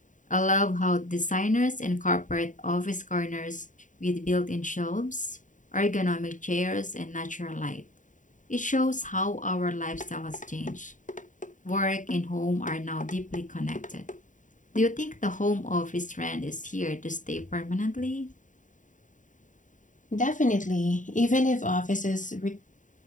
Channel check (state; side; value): late; right; 0.37 ms